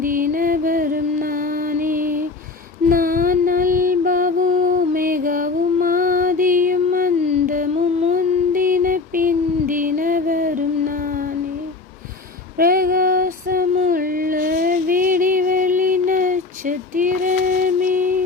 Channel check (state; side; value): quieter; right; 3.8 dB